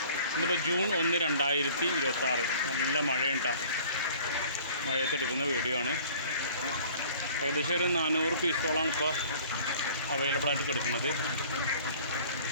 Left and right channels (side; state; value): both; inverted; correlation -0.49